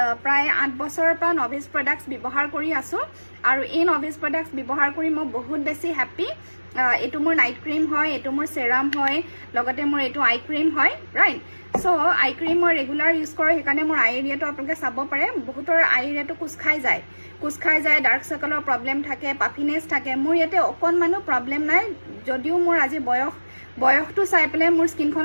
প্ৰায় 8 বছৰৰ পৰা নভেজ প্ৰডাক্টছ ব্যৱহাৰ কৰি আছো আৰু এই নভেজ প্ৰডাক্টছ ব্যৱহাৰ কৰি মই বহুত বেছি হ্যাপি এটো মোৰ নাইট ক্ৰীম হয় এটো মোৰ সেৰাম হয় লগতে মোৰ এটো আই ক্ৰীম হয় ৰাইট সো আই ক্ৰীম মই ৰেগুলাৰ ইউজ কৰে সেইকাৰণে মোৰ আই এৰিয়াটো আপোনালোকে চাব পাৰে বহুতৰ আই এৰিয়াটো কুছ খাই যায় ডাৰ্ক সাৰ্কলৰ প্ৰবলেম থাকে পাফিনেছ থাকে মোৰ ইয়াতে অকণমানো প্ৰবলেম নাই যদিও মোৰ আজি বয়সটো চাই পেলাই মোৰ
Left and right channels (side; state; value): both; inverted; correlation -1.00